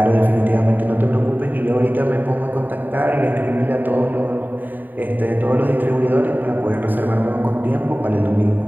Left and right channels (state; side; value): late; left; 0.090 ms